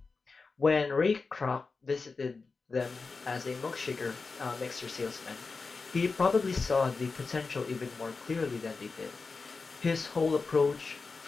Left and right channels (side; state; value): right; quieter; 4.3 dB